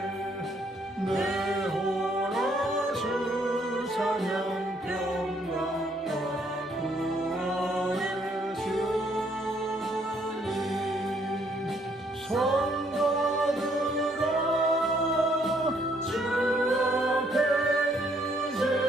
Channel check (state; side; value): normal; both; correlation 0.68